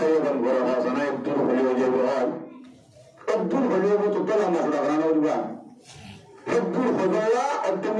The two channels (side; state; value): both; identical; correlation 1.00